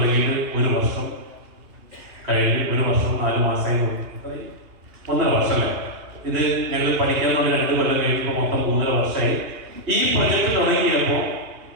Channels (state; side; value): late; left; 2.9 ms